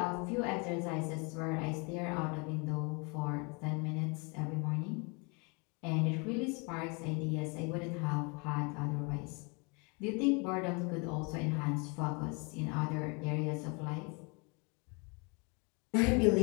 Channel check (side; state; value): right; quieter; 31.7 dB